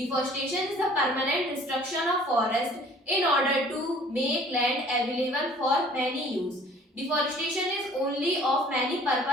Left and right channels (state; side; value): normal; both; correlation 0.52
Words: is the permanent destruction of forest in order to make land available for many use. Deforestation is only of many